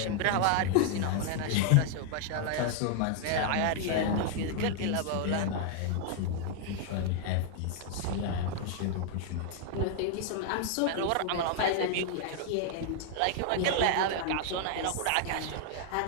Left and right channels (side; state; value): both; different; correlation 0.00